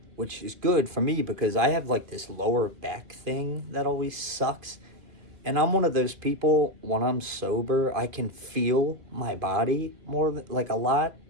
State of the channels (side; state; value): left; late; 2.5 ms